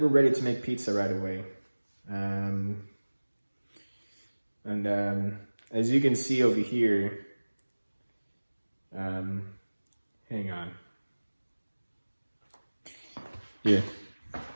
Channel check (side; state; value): both; inverted; correlation -1.00